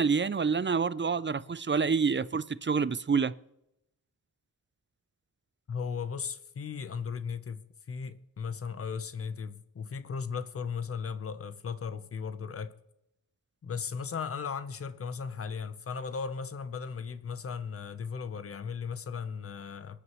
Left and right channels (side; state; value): both; normal; correlation 0.38